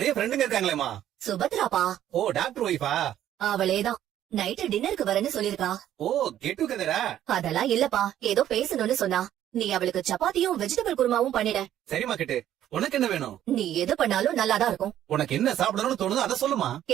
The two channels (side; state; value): left; quieter; 11.6 dB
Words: ஃப்ரெண்டுங்க இருக்காங்களேமா. சுபத்ராப்பா. ஓ, டாக்டர் ஒய்ஃபா? அவளேதான். நைட்டு டின்னருக்கு வரேன்னு சொல்லிருக்கா. ஓ, கெட் டுகெதரா? அதெல்லாம் இல்லப்பா, ஏதோ பேசணும்னு சொன்னா. நீ அவளுக்கு சப்பாத்தியும் வெஜிடபிள் குருமாவும் பண்ணிட. சரிமா கிட்டு. உனக்கு என்ன வேணும்? நீ எது பண்ணாலும் நல்லாதான் இருக்கும். உனக்கு என்ன சாப்பிடணும்னு தோணுதோ அதை சொல்லுமா.